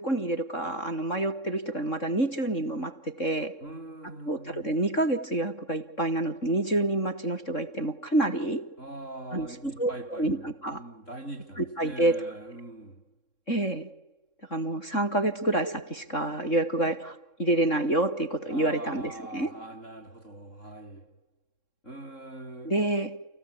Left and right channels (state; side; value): late; right; 3.7 ms